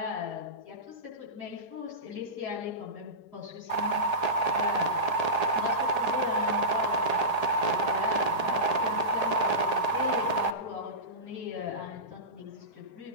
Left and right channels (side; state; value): right; late; 4.8 ms